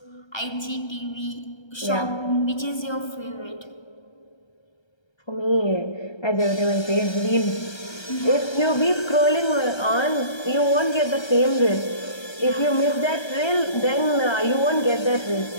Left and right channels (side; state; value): right; late; 1.3 ms